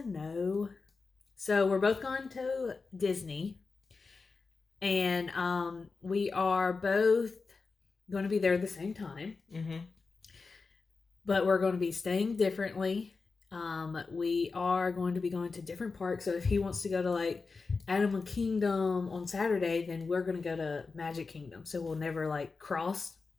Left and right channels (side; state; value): right; quieter; 4.4 dB